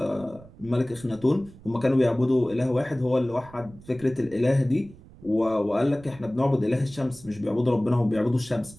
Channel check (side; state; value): right; noise; rumble, 21 dB below the sound